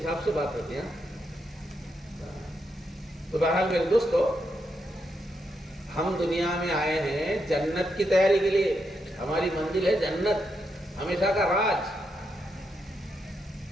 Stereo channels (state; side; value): normal; both; correlation 0.82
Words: سے بات ہوتی ہے۔ تو بہرحال میرے دوستو، ہم دنیا میں آئے ہیں جنت کی تیاری کے لیے، ہماری منزل ہے جنت، ہمیشہ کا راج،